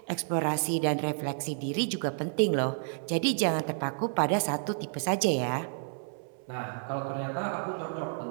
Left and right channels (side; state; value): left; silent; 58 dB below the other